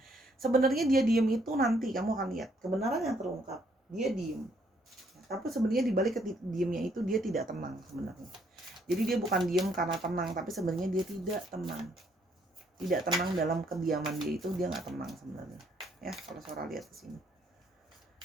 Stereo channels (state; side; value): normal; both; correlation 0.69